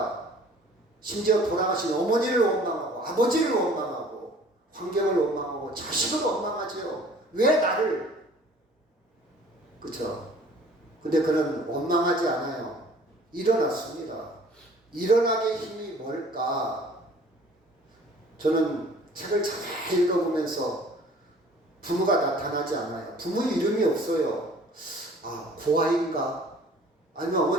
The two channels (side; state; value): both; normal; correlation 0.51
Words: 심지어 돌아가신 어머니를 원망하고 아버지를 원망하고 환경을 원망하고 자식을 원망하죠. 왜 나를? 그렇죠? 근데 그는 원망하지 않아요. 일어났습니다. 일어나게 힘이 뭘까? 저는 책을 잘 읽어보면서 부모가 나타나지 않아요. 부모 이름이 없어요. 아, 고아인가? 아니면